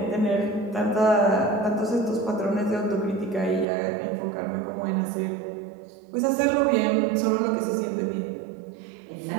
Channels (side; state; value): left; drops out; at 3.7 s